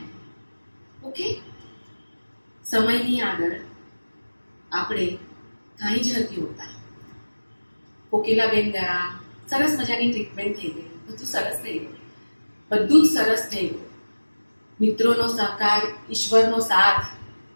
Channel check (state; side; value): inverted; both; correlation -1.00